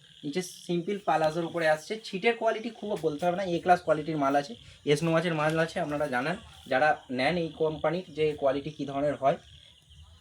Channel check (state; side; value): identical; both; correlation 1.00